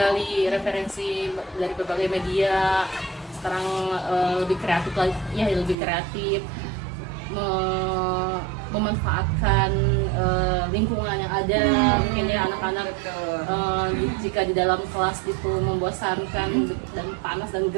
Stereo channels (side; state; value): left; drops out; at 5.8 s